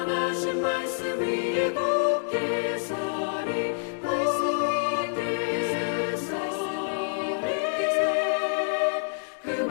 말씀 위에 굳게 서리. 그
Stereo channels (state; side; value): silent; right; digital silence